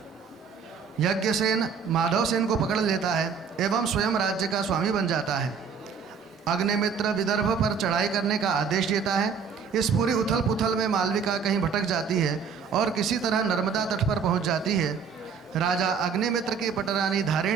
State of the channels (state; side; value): quieter; left; 6.2 dB